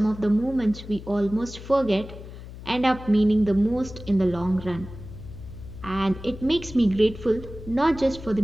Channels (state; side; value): noise; left; hum, 14 dB below the sound